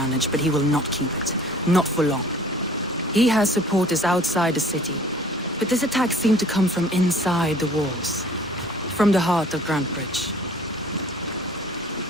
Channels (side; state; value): both; normal; correlation 0.51